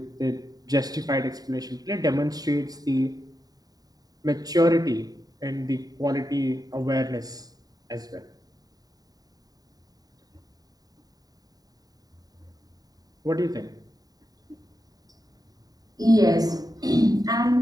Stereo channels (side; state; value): left; late; 0.18 ms